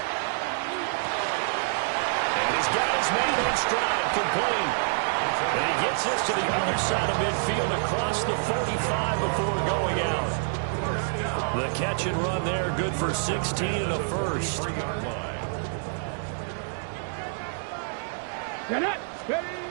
And he's got his man in stride, complete. And he gets this to the other side of midfield across the 45 before going out. The catch and run there, good for 16 and a first. Looking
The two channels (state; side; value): silent; left; digital silence